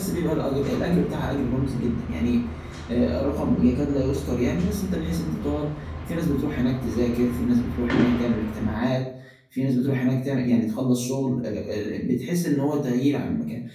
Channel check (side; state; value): both; identical; correlation 1.00